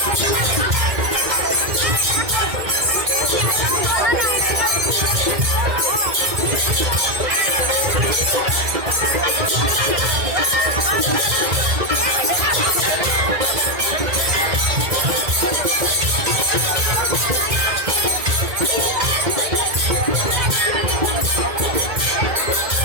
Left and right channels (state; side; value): late; left; 2.0 ms